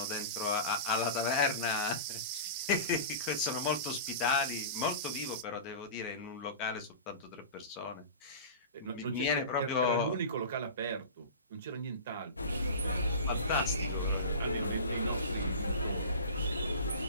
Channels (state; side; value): inverted; both; correlation -0.32